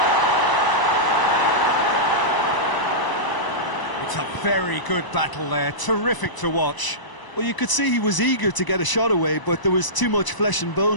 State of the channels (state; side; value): late; right; 1.0 ms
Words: It's a very good battle there. Terrific to watch. Well, you could see he was eager to get a shot away, but there was too much flesh and